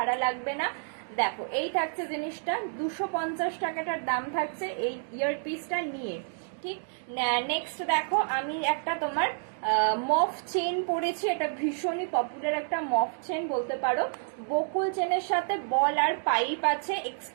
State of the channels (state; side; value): silent; left; digital silence